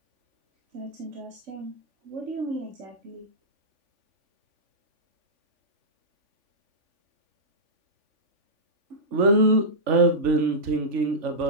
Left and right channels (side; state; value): left; late; 3.5 ms